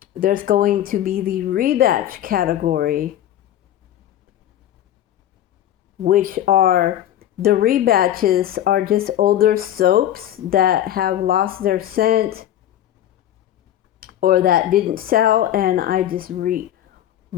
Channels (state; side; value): quieter; right; 11.8 dB